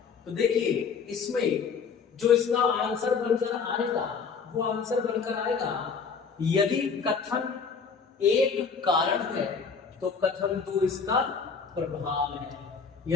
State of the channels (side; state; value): right; quieter; 5.6 dB